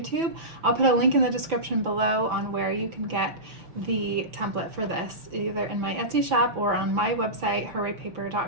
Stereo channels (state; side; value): late; left; 6.0 ms